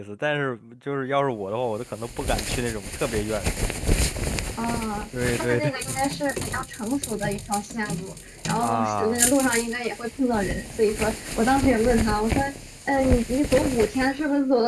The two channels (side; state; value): both; identical; correlation 1.00